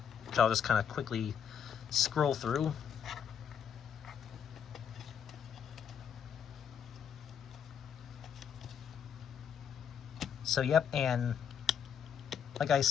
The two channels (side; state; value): right; quieter; 8.0 dB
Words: I'll just kind of quickly scroll through. So yep, and like I